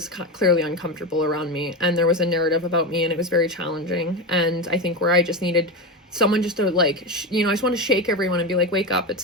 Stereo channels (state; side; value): normal; both; correlation 0.18